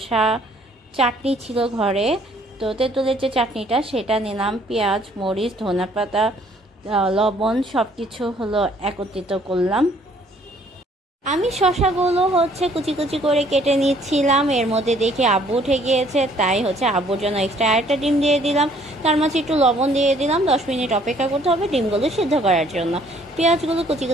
চাটনি ছিল ঘরে, তো তেঁতুলের যে চাটনিটা সেটা নিলাম। পেঁয়াজ, মরিচ, ধনেপাতা, লবণ সব কিছু একত্রিত করলাম। আমি শসাগুলো কুচি কুচি করে কেটে নিচ্ছিলাম। এর মধ্যে দেখে আব্বু উঠে গিয়েছে, তাই আব্বুর জন্য এক্সট্রা আরেকটা ডিম দিয়ে দিলাম। তার মাঝে একটু লবণ দিয়ে দিলাম। 10 মিনিট অপেক্ষা করতে হবে ডিমগুলো সিদ্ধ করার জন্য। পেঁয়াজগুলো কুচি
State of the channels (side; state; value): both; normal; correlation 0.61